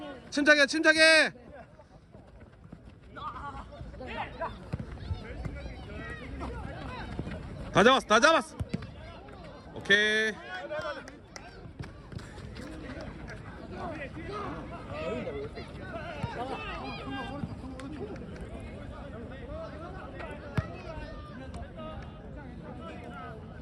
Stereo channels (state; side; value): identical; both; correlation 1.00